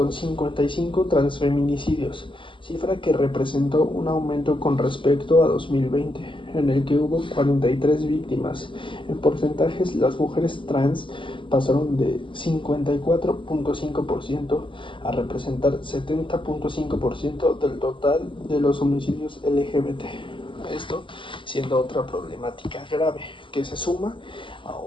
55 transfeminicidios, cifra que representó un aumento con respecto a 2020, en el que hubo 43 víctimas. En porcentajes, las mujeres trans pasaron de 54.5% a representar 70.5% del total de los homicidios LGBT. Esto siendo otra problemática grave que se suma a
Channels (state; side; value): late; right; 0.25 ms